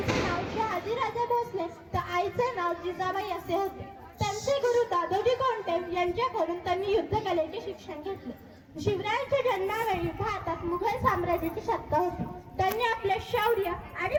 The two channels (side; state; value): both; identical; correlation 1.00